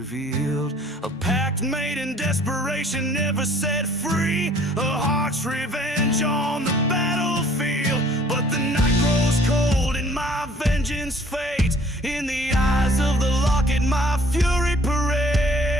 A pact made in desperation, never set free. A heart's revenge on the battlefield. But the night grows cold and my vengeance fades. In the eyes of the locket my fury parades.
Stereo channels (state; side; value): normal; both; correlation 0.56